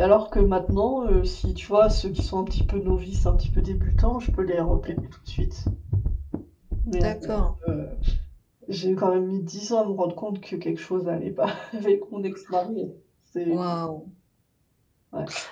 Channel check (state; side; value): identical; both; correlation 1.00